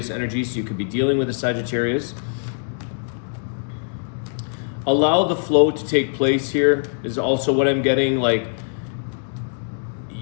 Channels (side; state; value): right; silent; digital silence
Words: energy, so you could be dealing with a Sagittarius. Allow the flow to take place here is also what I'm getting. Like,